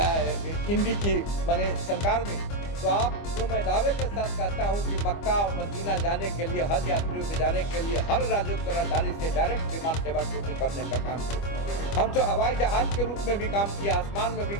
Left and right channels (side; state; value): right; late; 25 ms